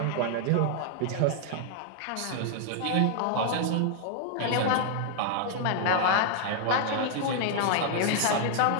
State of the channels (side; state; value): both; different; correlation 0.00